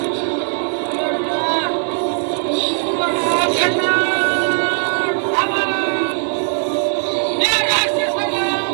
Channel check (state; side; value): silent; left; digital silence